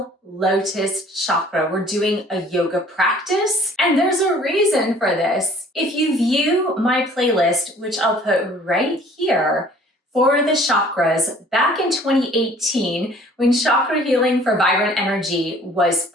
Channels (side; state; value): both; normal; correlation 0.53